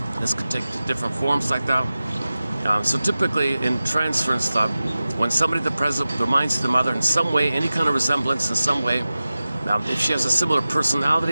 This could take different forms like that. So typically in transference stuff, when somebody at the present reminds the mother in some way, any kind of resemblance in some way, if she has a similar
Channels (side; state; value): both; inverted; correlation -0.95